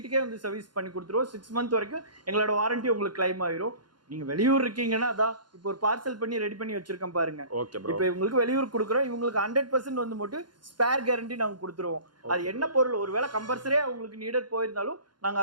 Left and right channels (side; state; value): left; late; 0.71 ms